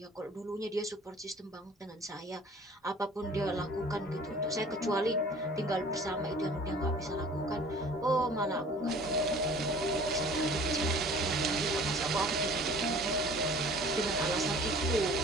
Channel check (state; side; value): normal; both; correlation 0.48